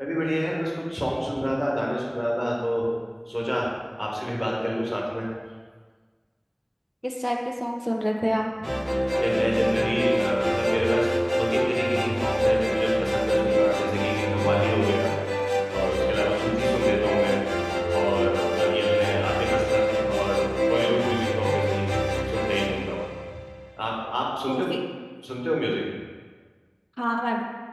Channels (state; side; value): identical; both; correlation 1.00